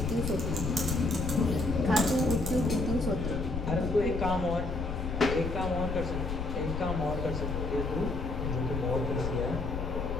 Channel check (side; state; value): left; noise; rumble, 4 dB below the sound